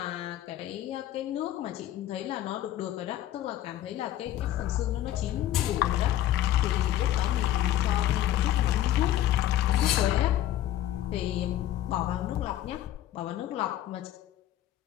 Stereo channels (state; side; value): quieter; right; 13.0 dB